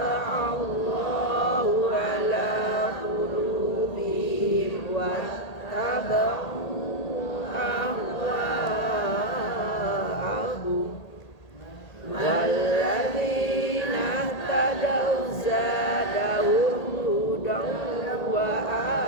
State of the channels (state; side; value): late; right; 1.8 ms